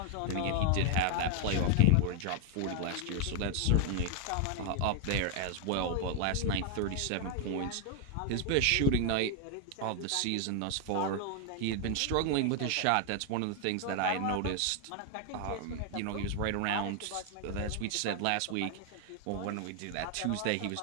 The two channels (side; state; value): both; different; correlation 0.00